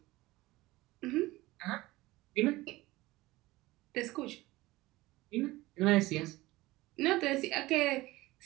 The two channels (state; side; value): quieter; left; 19.2 dB